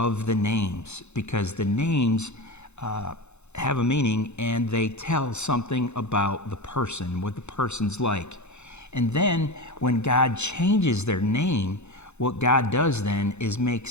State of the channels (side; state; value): right; late; 0.82 ms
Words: the names, because the names have a meaning and they tell something about the person, what the person's like. And then when God changes their name, what God does then is